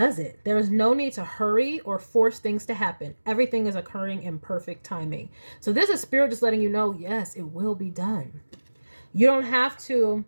it. There is no need to hurry or force things to happen. Everything is occurring in perfect timing. So this is Spirit just letting you know, yes, it will be done. You don't have to.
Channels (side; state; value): both; inverted; correlation -1.00